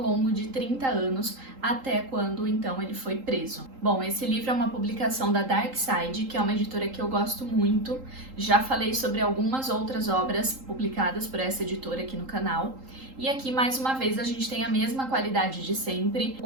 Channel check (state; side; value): late; left; 3.8 ms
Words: de 30 anos, até quando então ele foi preso. Bom, esse livro é uma publicação da Dark Side, que é uma editora que eu gosto muito. Já falei sobre algumas outras obras publicadas por essa editora aqui no canal. E aqui, mais uma vez, a gente tem a mesma qualidade de sempre,